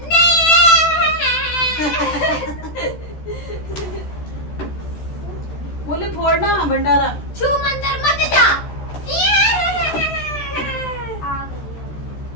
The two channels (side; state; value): right; late; 14 ms